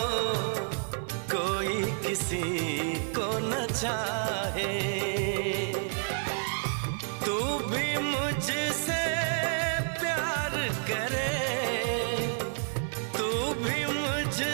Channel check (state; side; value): silent; left; digital silence